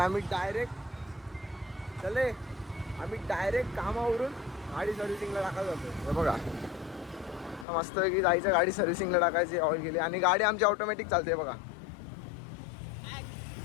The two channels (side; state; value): right; drops out; at 7.7 s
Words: डायरेक्ट कामावरून गाडी सर्व्हिसिंगला टाकायला जातो. हे बघा, मस्त की जायचं गाडी सर्व्हिसिंगला टाकायची, ऑइल गेली आणि गाडी आमची ऑटोमॅटिक चालते. बघा,